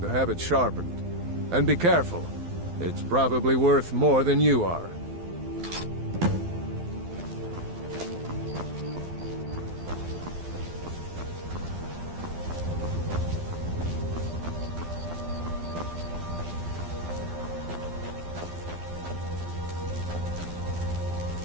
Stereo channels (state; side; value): late; left; 12 ms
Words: to have it sharpened. And be careful. It's probably worth more than you are.